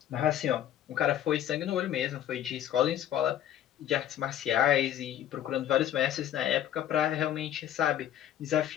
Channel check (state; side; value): quieter; right; 11.1 dB